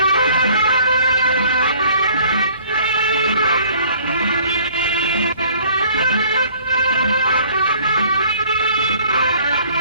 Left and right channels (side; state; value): both; inverted; correlation -0.55